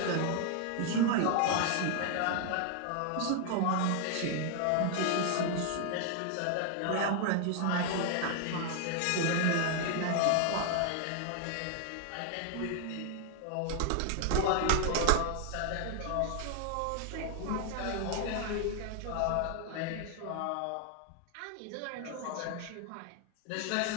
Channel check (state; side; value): different; both; correlation 0.00